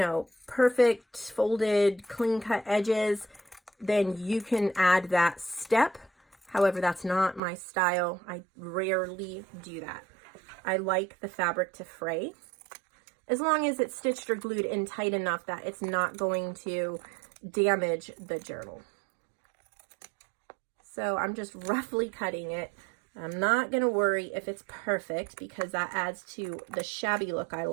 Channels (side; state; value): left; drops out; at 7.4 s